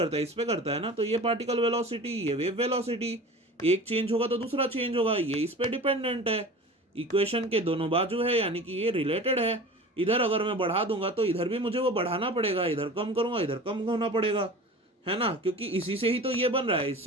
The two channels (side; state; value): both; normal; correlation 0.37